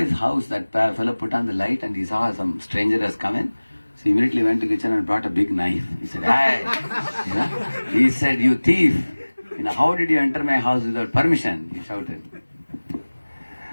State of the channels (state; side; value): inverted; both; correlation -1.00